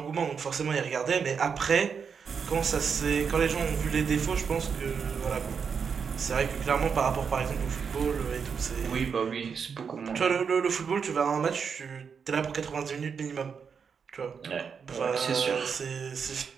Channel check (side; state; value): left; quieter; 6.3 dB